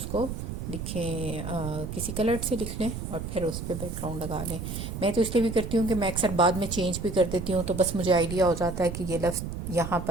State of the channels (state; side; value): noise; right; rumble, 6 dB below the sound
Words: کو لکھیں, کسی کلر سے لکھ لیں اور پھر اس پہ بیک گراؤنڈ لگا لیں. میں تو اس لیے بھی کرتی ہوں کہ میں اکثر بعد میں چینج بھی کر دیتی ہوں, تو بس مجھے آئیڈیا ہو جاتا ہے کہ یہ لفظ یہاں